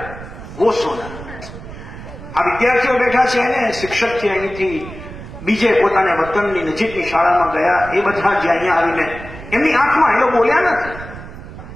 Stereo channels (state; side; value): noise; right; rumble, 13 dB below the sound